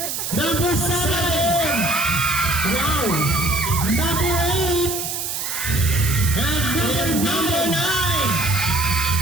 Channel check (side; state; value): right; noise; hiss, 4 dB below the sound